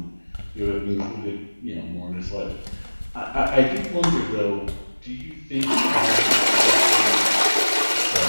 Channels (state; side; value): inverted; both; correlation -1.00